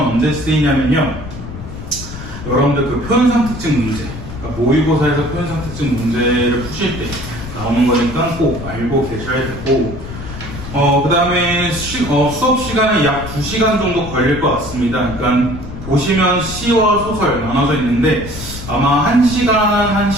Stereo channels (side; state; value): left; noise; rumble, 11 dB below the sound